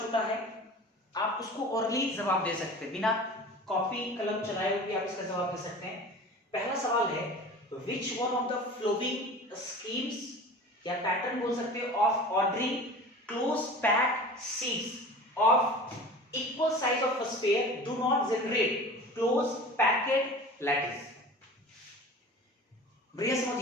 छोटा है, आप उसको ओरली जवाब दे सकते हैं, बिना कॉपी कलम चलाए हुए आप इसका जवाब दे सकते हैं। पहला सवाल है which one of the following schemes या पैटर्न बोल सकते हैं of ordering close packed sheets of equal size of a sphere do not generate close packed lattice। बढ़िया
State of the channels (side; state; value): both; normal; correlation 0.38